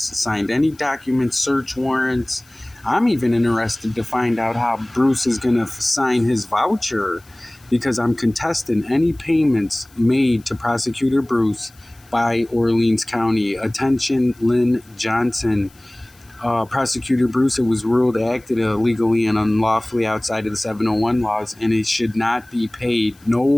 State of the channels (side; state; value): left; noise; hiss, 29 dB below the sound